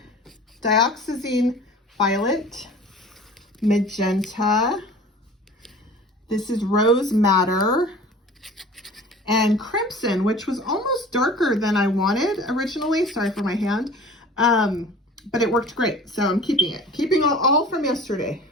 Dioxazine violet, magenta. This is rose madder, and crimson, which was almost darker than I wanted originally. Sorry for my hand. But it worked great, so I'm keeping it. Keeping all from yesterday.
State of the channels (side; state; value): both; normal; correlation 0.43